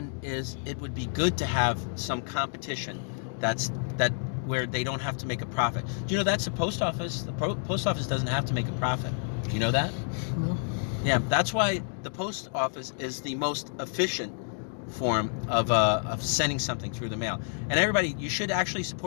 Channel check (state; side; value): silent; right; 58 dB below the other